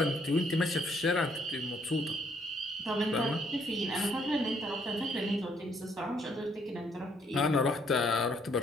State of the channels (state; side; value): normal; both; correlation 0.67